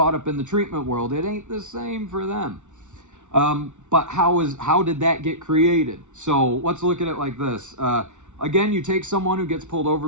up in the treatment world, it ain't the same for them. But how did that get created? So let's look at it like this. Again, you take someone who gets pulled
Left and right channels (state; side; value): late; left; 0.84 ms